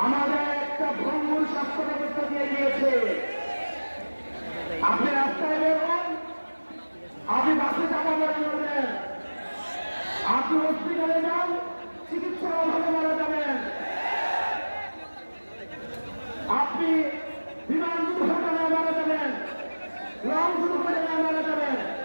আমাদের একটা ভঙ্গুর স্বাস্থ্য ব্যবস্থা দিয়ে গিয়েছে। আপনি রাস্তায় বেরোন, আপনি বাসে চাপা পড়ে যাবেন, আপনি হসপিটালে যান, চিকিৎসার অভাবে মারা যাবেন, আপনি বিমান দুর্ঘটনায় মারা যাবেন, লং দুর্ঘটনায় মারা যাবেন।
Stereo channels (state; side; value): inverted; both; correlation -1.00